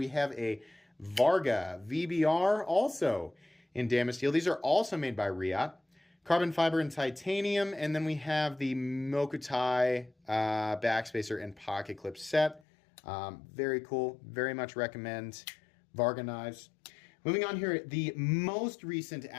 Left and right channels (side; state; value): right; drops out; at 12.6 s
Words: have a Varga VBR, also in Damasteel. These are also made by Riot. Carbon fiber and titanium, and then we have the Mokutai backspacer and pocket clip set. Very cool. Very much recommend Varga knives. Moving on here, the most recent